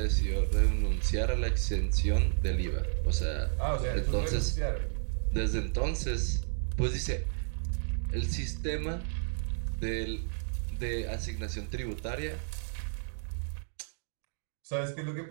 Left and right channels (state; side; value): silent; left; digital silence